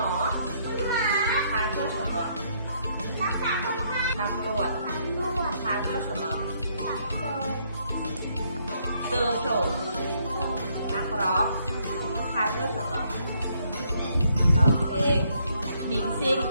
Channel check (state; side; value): inverted; both; correlation -0.70